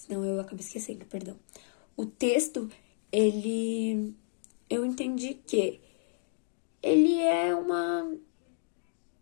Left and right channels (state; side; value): silent; right; digital silence